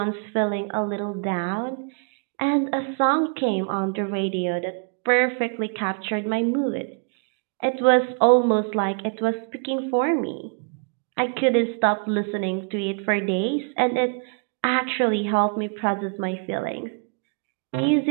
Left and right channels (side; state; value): left; quieter; 39.8 dB